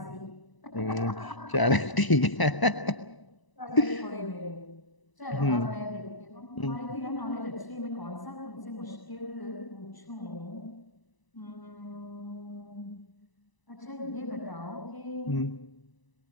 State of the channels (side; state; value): right; late; 1.0 ms